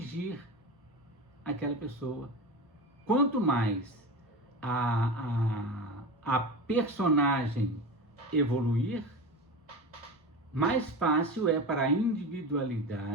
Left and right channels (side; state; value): both; normal; correlation 0.26